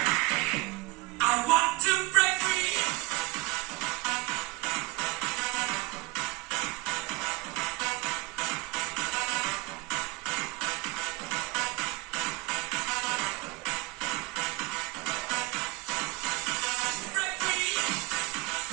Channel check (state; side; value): quieter; left; 23.5 dB